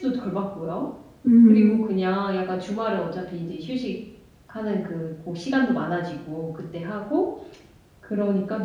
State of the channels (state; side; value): identical; both; correlation 1.00